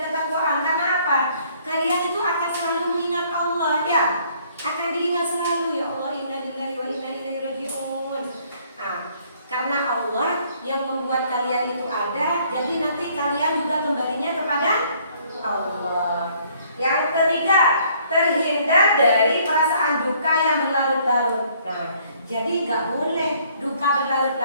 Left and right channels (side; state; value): both; inverted; correlation -0.62